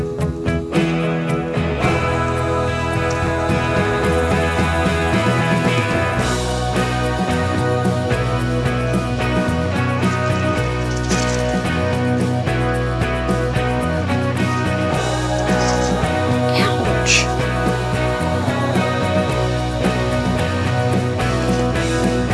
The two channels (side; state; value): both; identical; correlation 1.00